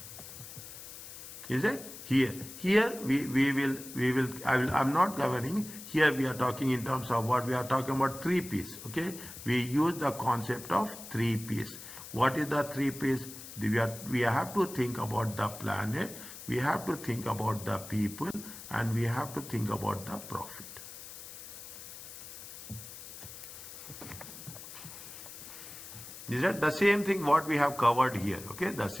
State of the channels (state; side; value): noise; left; hiss, 13 dB below the sound